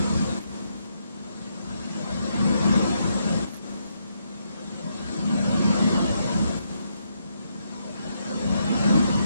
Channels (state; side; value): inverted; both; correlation -0.78